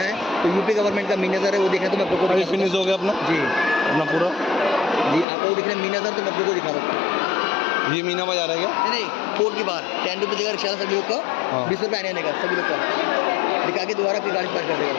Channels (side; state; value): right; drops out; at 5.2 s